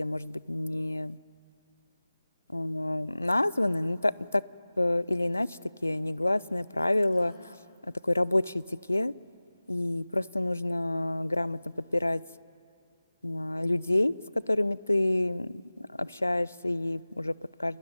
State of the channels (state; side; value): inverted; both; correlation -0.99